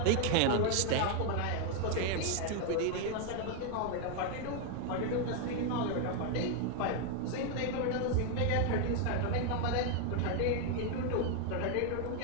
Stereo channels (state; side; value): different; both; correlation 0.01